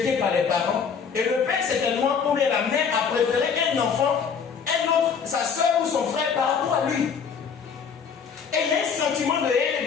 par les parents. Et le père, certainement, ou bien la mère, a préféré un enfant, un autre, sa soeur ou son frère par rapport à lui. Et il y a un sentiment de haine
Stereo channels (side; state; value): right; quieter; 6.4 dB